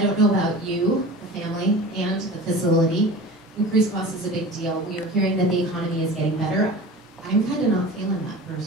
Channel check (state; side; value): normal; both; correlation 0.36